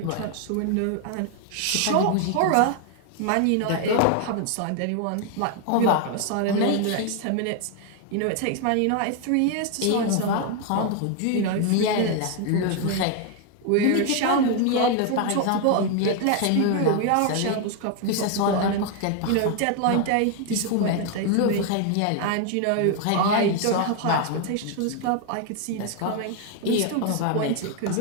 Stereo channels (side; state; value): both; different; correlation 0.00